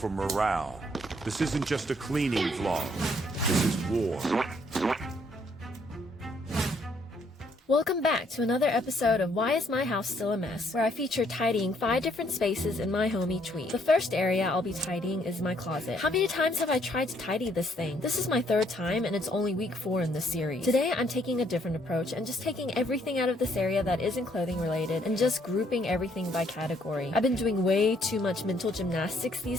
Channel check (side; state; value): both; normal; correlation 0.68